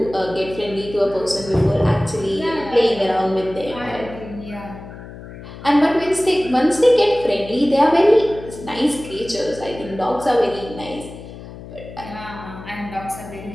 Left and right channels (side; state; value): left; noise; hum, 14 dB below the sound